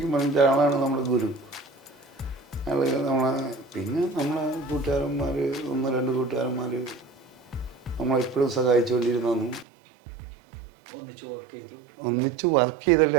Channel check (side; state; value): left; drops out; at 9.7 s